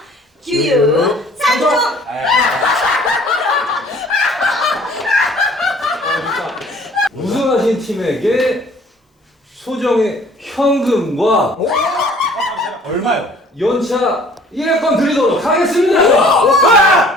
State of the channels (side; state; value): both; normal; correlation 0.54